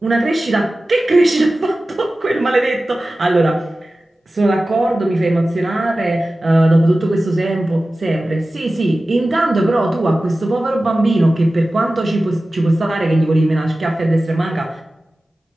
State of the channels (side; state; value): both; normal; correlation 0.96